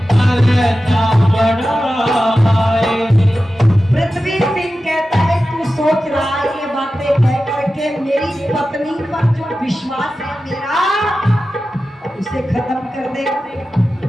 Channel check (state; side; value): normal; both; correlation 0.93